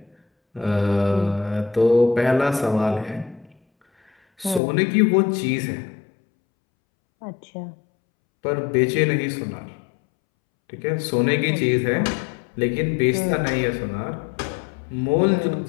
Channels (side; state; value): right; drops out; at 4.6 s